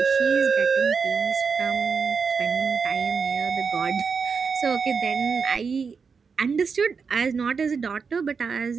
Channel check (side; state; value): left; quieter; 5.5 dB